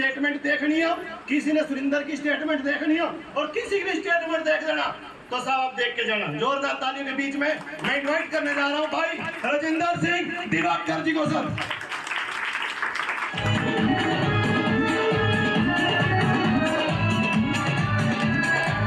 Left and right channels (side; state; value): both; identical; correlation 1.00